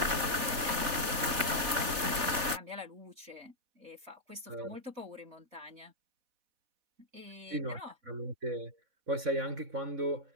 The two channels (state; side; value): late; left; 4.1 ms